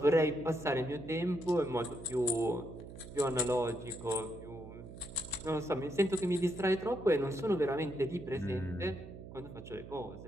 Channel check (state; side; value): noise; right; hum, 13 dB below the sound